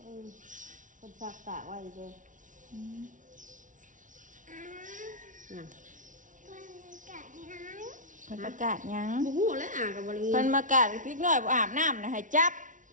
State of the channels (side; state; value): left; late; 0.37 ms